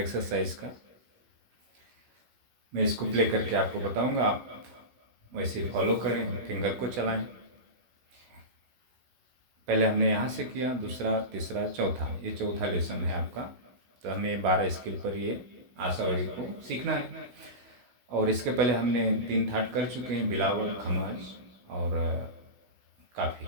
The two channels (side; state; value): left; late; 16 ms